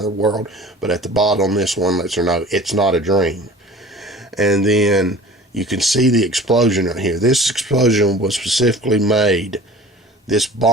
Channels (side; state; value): both; normal; correlation 0.43